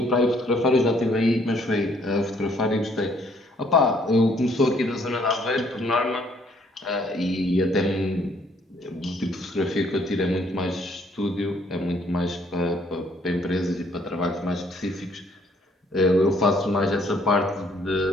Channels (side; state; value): both; normal; correlation 0.65